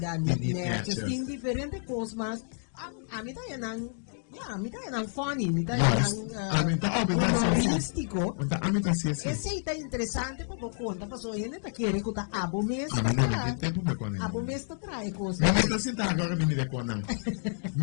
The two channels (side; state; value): right; silent; digital silence